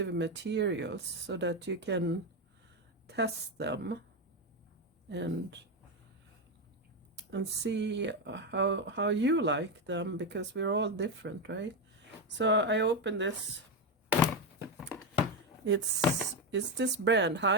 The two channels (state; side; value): normal; both; correlation 0.09